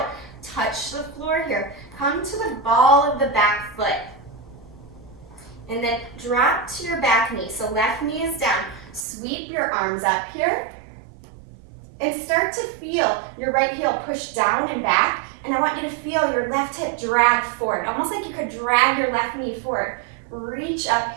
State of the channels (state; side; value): drops out; left; at 9.1 s